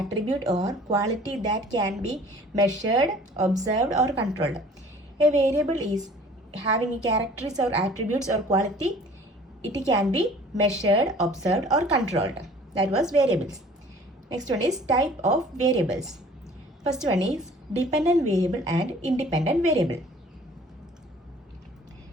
or quality that can be measured, observed or controlled. A variable is having characteristics or attributes or quality. It can be measured, observed or controlled. That was variables. Next one is type of variables. First one is dependent variable and independent variable.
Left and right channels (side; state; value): both; normal; correlation 0.50